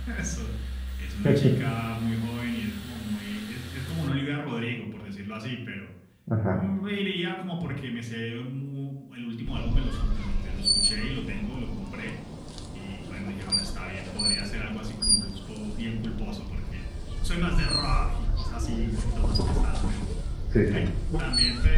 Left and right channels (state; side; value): identical; both; correlation 1.00